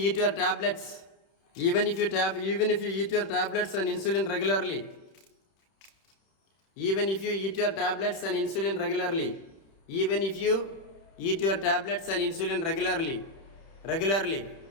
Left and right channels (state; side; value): late; right; 31 ms